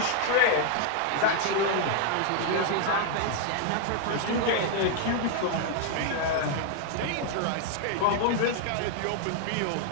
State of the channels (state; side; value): different; both; correlation 0.00